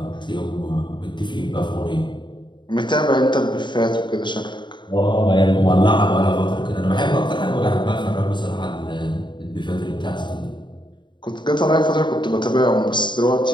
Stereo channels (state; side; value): late; right; 0.22 ms